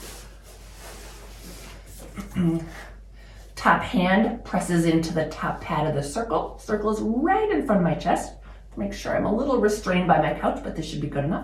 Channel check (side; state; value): both; identical; correlation 1.00